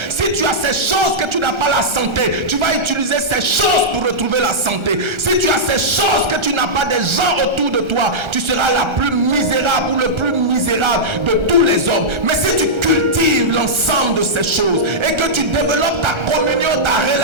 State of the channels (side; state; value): left; late; 1.3 ms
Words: Si tu as ces choses que tu n'as pas la santé, tu vas utiliser ces choses pour retrouver la santé. Si tu as ces choses que tu n'as pas des gens autour de toi, tu seras la plus misérable ou le plus misérable de tous les hommes. Mais si tu cultives l'ensemble de ces choses et que tu développes ta communion, ta